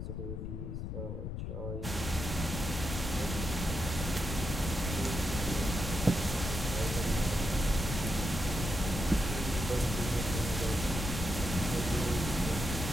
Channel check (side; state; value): left; noise; rumble, 4 dB below the sound